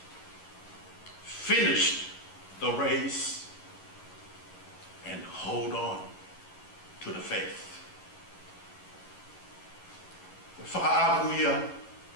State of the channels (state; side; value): late; right; 11 ms